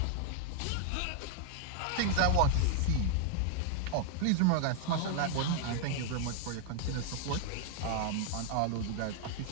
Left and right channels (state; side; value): different; both; correlation 0.00